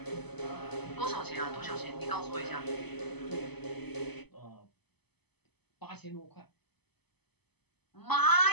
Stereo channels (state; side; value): late; right; 0.98 ms